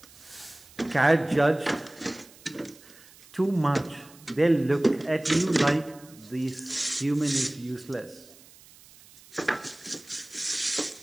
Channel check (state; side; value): noise; right; hiss, 24 dB below the sound